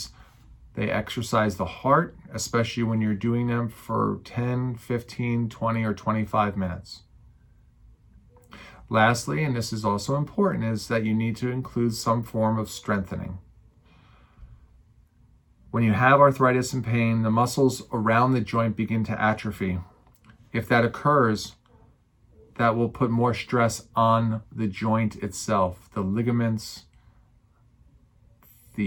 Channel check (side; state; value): both; identical; correlation 1.00